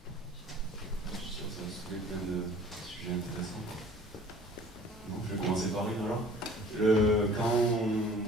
Je suis sûr que ça va soulever plein de sujets intéressants. Non, je vais commencer par une alors.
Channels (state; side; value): normal; both; correlation 0.49